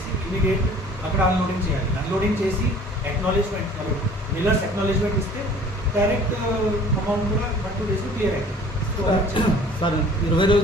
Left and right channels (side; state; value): both; normal; correlation 0.50